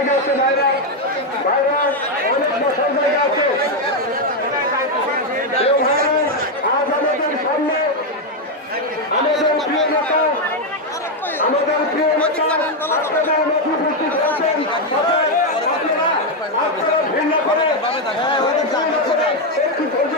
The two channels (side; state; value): both; normal; correlation 0.04